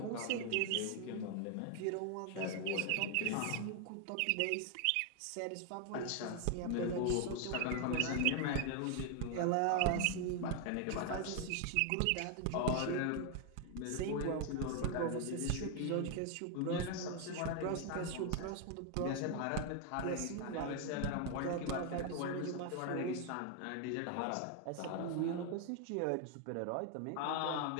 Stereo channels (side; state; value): both; different; correlation 0.00